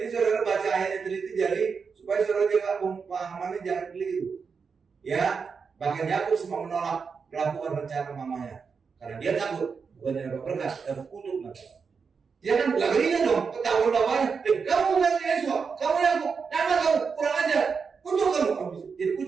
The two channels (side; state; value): left; quieter; 5.6 dB